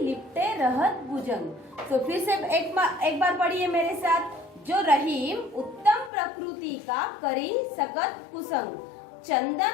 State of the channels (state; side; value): drops out; right; at 6.1 s